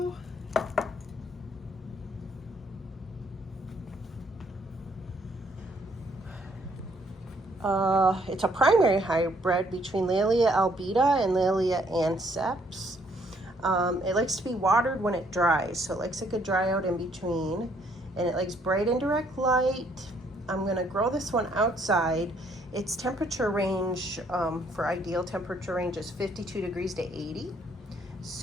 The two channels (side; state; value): both; normal; correlation 0.67